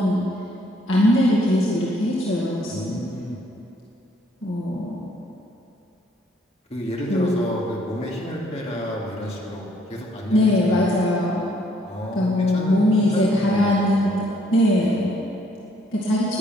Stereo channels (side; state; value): both; normal; correlation 0.66